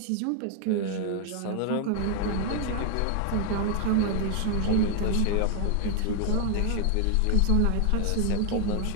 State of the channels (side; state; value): both; different; correlation 0.00